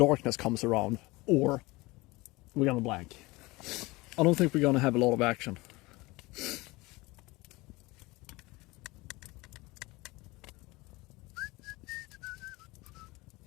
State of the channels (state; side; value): quieter; right; 22.2 dB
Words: comes around, or we're gonna blank. I don't think we're gonna have a lot of action.